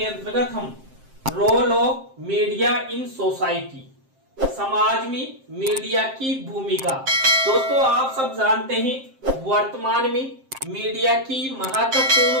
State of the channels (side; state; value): left; late; 7.6 ms